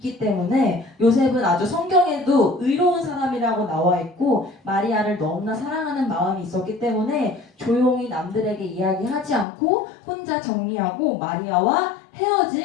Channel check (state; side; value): drops out; right; at 9.5 s